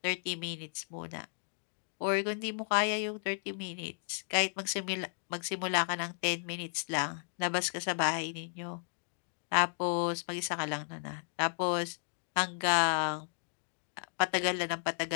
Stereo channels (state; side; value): silent; right; digital silence